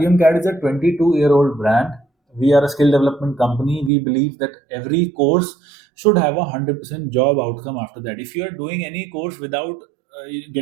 CAD is a 22-year-old brand. We are a skill development company. We believe that every course should have a 100% job outcome after that. If you are doing any course without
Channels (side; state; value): left; drops out; at 3.9 s